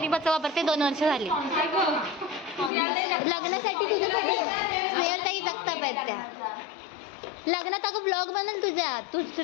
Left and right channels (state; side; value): drops out; right; at 2.7 s